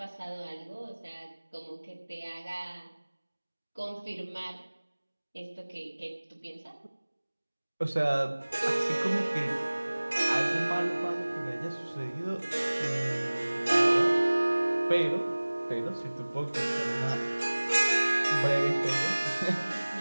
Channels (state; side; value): inverted; both; correlation -1.00